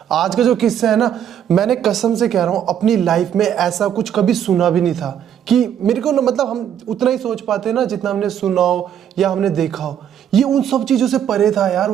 आज का जो किस्सा है ना, मैंने कसम से कह रहा हूँ अपनी लाइफ में ऐसा कुछ कभी सुना भी नहीं था। कि मेरे को ना, मतलब हम उतना ही सोच पाते ना जितना हमने सुना हो या हमने देखा हो। ये उन सब चीज़ों से परे था यार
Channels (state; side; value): quieter; left; 9.5 dB